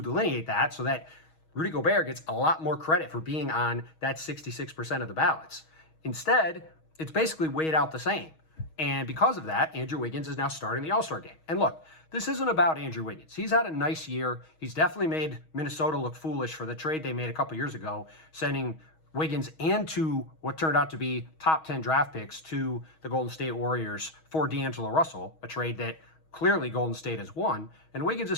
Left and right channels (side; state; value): right; late; 6.3 ms